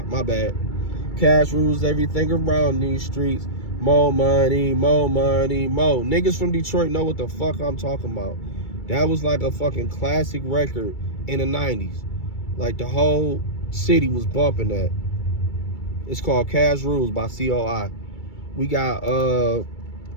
my bad. Cash rules everything around these streets. More money, more money, more. Niggas from Detroit know what the fuck I'm talking about. That was like a fucking classic record in the 90s. Like the whole city was bumping that. It's called Cash Rules by COI. We got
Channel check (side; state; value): right; late; 2.3 ms